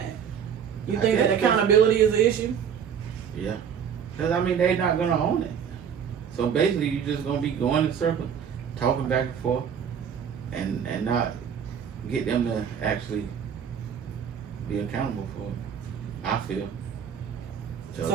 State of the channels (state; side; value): quieter; left; 7.8 dB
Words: You think that accountability is an issue? Yeah. Cause they not gonna own it. So basically, you just gonna be going in circles, talking back and forth, and not get them to actually be accountable for it. I feel.